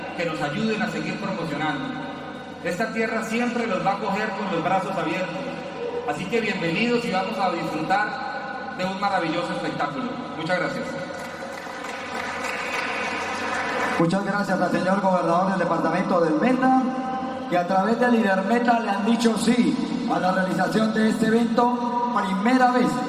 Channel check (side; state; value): both; identical; correlation 1.00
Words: que nos ayuden a seguir promocionando. Esta tierra siempre los va a acoger con los brazos abiertos. Así que bienvenidos y vamos a disfrutar de un maravilloso espectáculo. Muchas gracias. Muchas gracias al señor gobernador del departamento del Meta, que a través del líder Meta le han dicho sí a la realización de este evento, primera vez